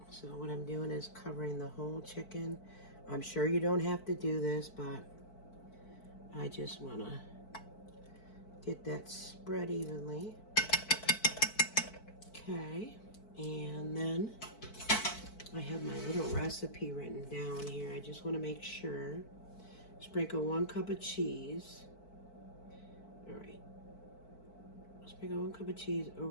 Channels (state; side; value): late; right; 4.5 ms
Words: So what I'm doing is covering the whole chicken. I'm sure you don't have to do this, but I just want to get that spread evenly. Okay, and then I have my little recipe written down here. I just want to make sure. Sprinkle 1 cup of cheese. All right. Sprinkle 1 cup of cheese